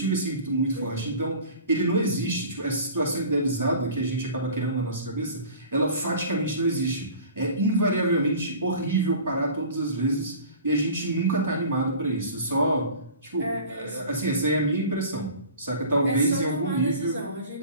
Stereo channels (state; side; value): inverted; both; correlation -0.42